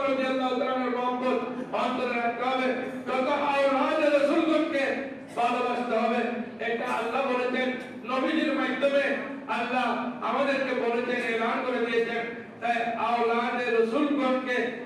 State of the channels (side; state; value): both; identical; correlation 1.00